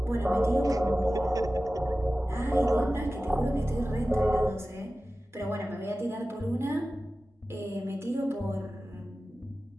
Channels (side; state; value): both; normal; correlation 0.95